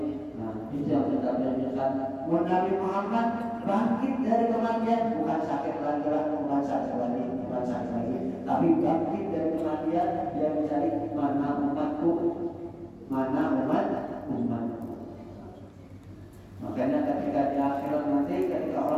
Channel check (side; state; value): both; identical; correlation 1.00